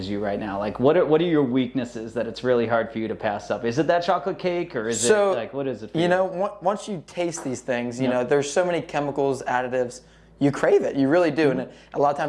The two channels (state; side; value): identical; both; correlation 1.00